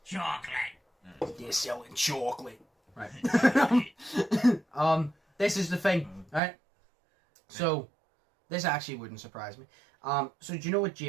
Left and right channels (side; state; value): left; drops out; at 6.4 s